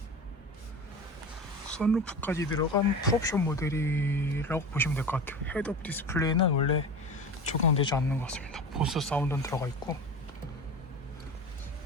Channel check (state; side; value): normal; both; correlation 0.31